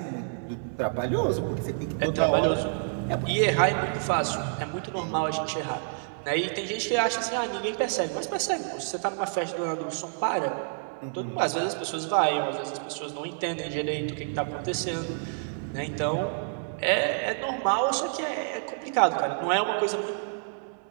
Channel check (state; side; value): silent; left; digital silence